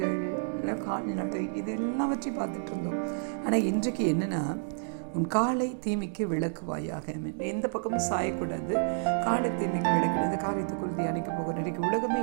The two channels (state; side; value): silent; left; digital silence